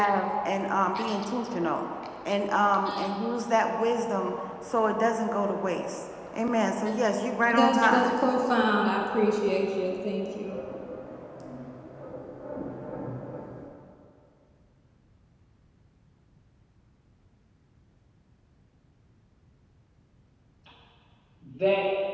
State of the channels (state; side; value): identical; both; correlation 1.00